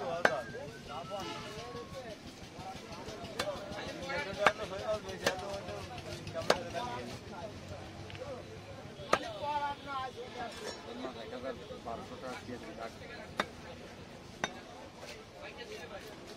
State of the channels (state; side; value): identical; both; correlation 1.00